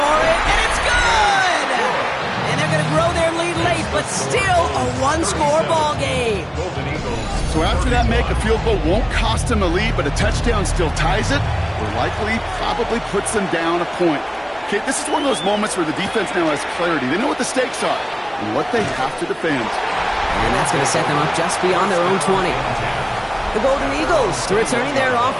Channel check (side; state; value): both; identical; correlation 1.00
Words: it, and it's good! And they're going to grow their lead late, but still a one-score ball game. So after that make, a field goal won't cost them a lead, but a touchdown still ties it, or likely probably puts them down a point. Okay, this is one of those moments where the defense now has clarity. They know what the stakes are and what they have to defend. And that's going to set them up just beyond their own 20. The Golden Eagles returning their